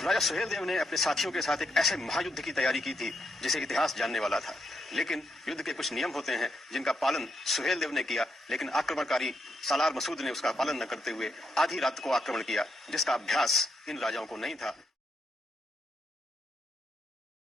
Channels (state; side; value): normal; both; correlation 0.79